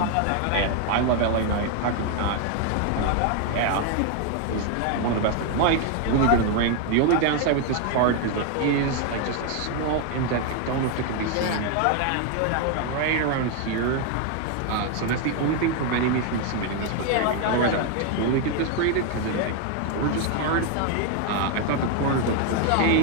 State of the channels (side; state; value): both; different; correlation 0.01